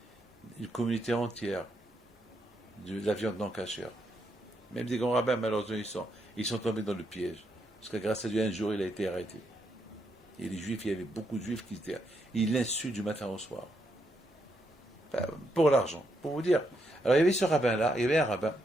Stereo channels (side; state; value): both; normal; correlation 0.79